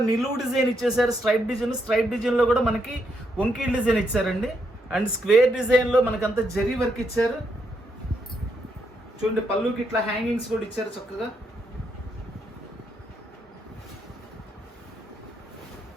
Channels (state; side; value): normal; both; correlation 0.78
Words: నిలువు డిజైన్ ఇచ్చేసారు. స్ట్రైప్ డిజైన్లో కూడా మనకి వంకీల్ డిజైన్ ఇచ్చారండి. అండ్ స్క్వేర్ డిజైన్లో మనకంతా జరీ వర్క్ ఇచ్చారు. చూడండి పళ్ళుకి ఇట్లా హ్యాంగింగ్స్ కూడా ఇచ్చారు చక్కగా.